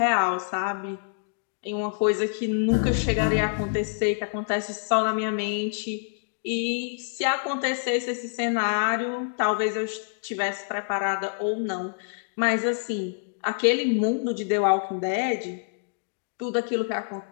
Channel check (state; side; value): silent; right; digital silence